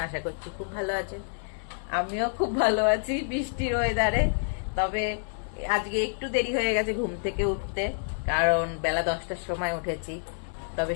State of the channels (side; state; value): right; silent; digital silence